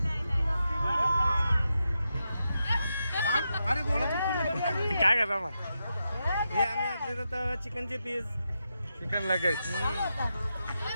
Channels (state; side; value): inverted; both; correlation -0.87